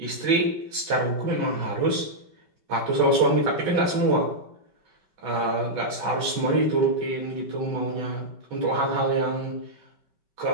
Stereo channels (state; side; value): late; left; 5.3 ms